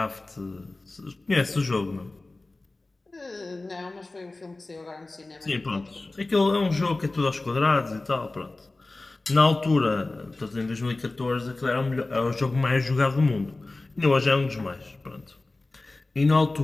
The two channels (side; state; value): right; quieter; 3.1 dB